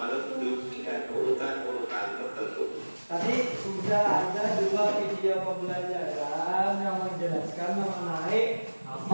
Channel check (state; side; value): inverted; both; correlation -1.00